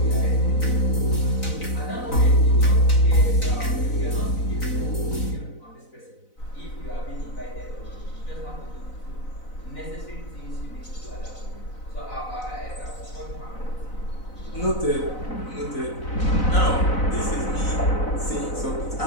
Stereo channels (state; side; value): late; right; 4.0 ms